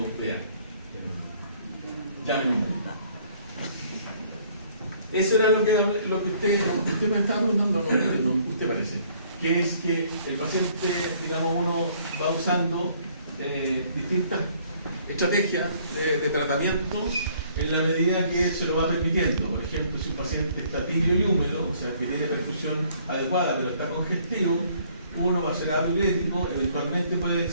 vea. Llamen un médico. Eso era lo que usted me estaba preguntando, no, usted parece. Que es que el paciente, digamos, uno va usando distintas estrategias de tratamiento en la medida que se lo va permitiendo. Por ejemplo, si un paciente está tibio y húmedo, o sea, que tiene perfusión adecuada pero está congestivo, uno va a ser diurético, eventualmente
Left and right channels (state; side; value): inverted; both; correlation -0.61